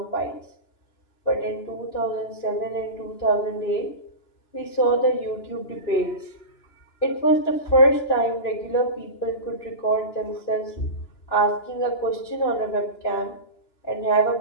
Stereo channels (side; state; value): right; late; 2.9 ms